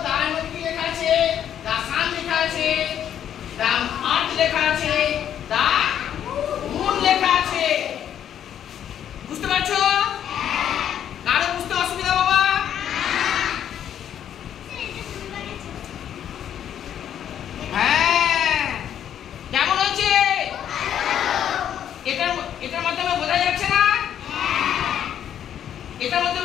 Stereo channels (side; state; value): right; quieter; 9.8 dB